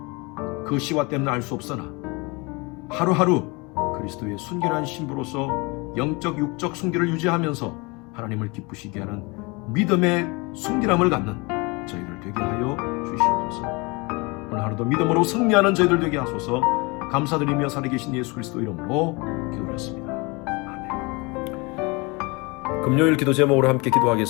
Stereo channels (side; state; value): right; quieter; 27.2 dB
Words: 그 시와 때는 알 수 없으나 하루하루 그리스도의 순결한 신부로서 영적 육적 순결을 유지하면서 하나님을 기쁘시게 하는 믿음의 순결함을 갖는 저희들 되게 하여 주시옵소서. 오늘 하루도 믿음으로 승리하는 저희들 되게 하소서. 감사드리며 살아계신 예수 그리스도 이름으로 기도했습니다. 금요일 기도 제목으로 함께